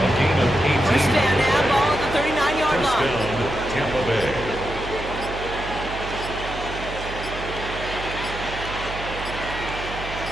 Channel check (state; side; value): noise; right; hum, 10 dB below the sound